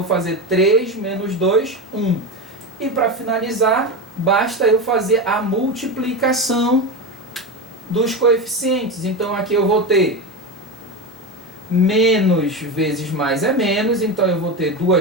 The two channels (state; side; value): normal; both; correlation 0.19